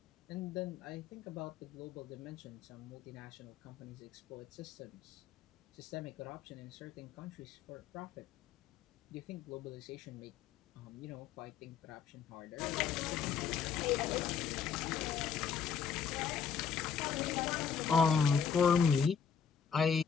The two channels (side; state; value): right; quieter; 6.7 dB